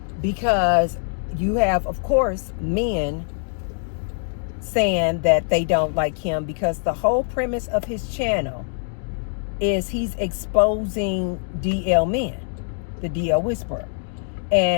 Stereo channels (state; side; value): silent; right; 63 dB below the other